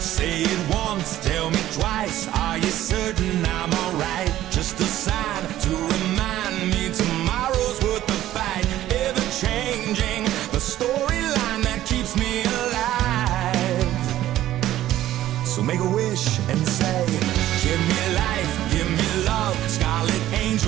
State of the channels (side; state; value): left; quieter; 13.6 dB